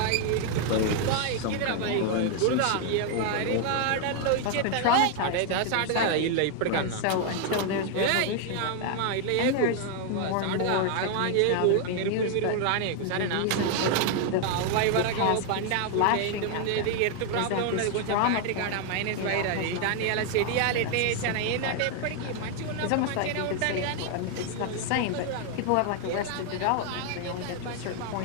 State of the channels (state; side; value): different; both; correlation 0.00